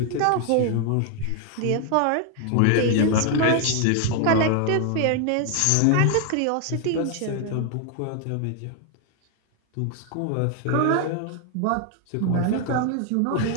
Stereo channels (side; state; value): both; different; correlation 0.00